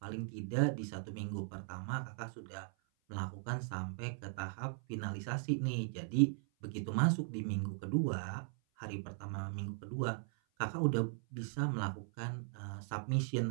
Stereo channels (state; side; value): silent; left; 52 dB below the other